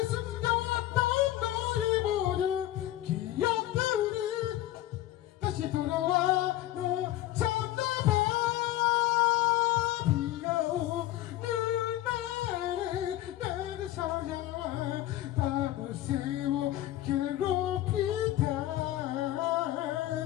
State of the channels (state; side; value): quieter; right; 14.4 dB